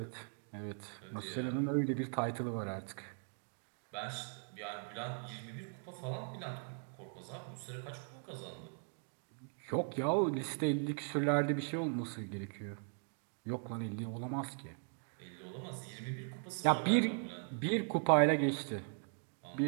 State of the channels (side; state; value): left; silent; 52 dB below the other